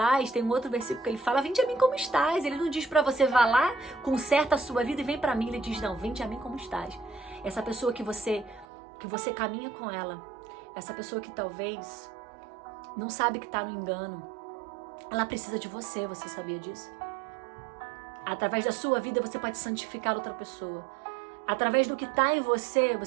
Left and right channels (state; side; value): drops out; left; at 8.7 s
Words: Tem um outro versículo que ele fala, vinde a mim como estás. Ele não diz para você, vá lá, conserta a sua vida e vem para mim. Ele diz, não, vinde a mim como estás. Essa pessoa que você caminha com ela, essa pessoa que talvez não sabe que está no engano, ela precisa de você, você sabia disso? Através da sua vida você pode santificar outra pessoa. Através do que está em você,